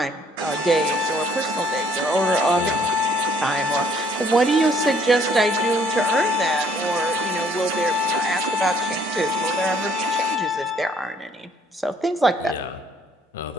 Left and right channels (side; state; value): both; normal; correlation 0.62